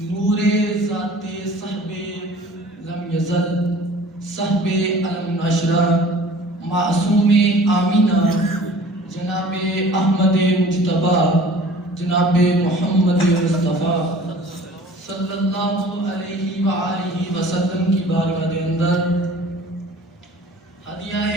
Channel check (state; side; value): normal; both; correlation 0.47